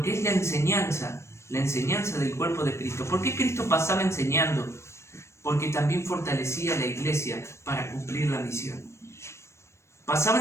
que es la enseñanza del cuerpo de Cristo. ¿Por qué Cristo pasaba enseñando? Porque también fortalecía a la iglesia para cumplir la misión. Pasaba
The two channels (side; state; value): right; late; 0.13 ms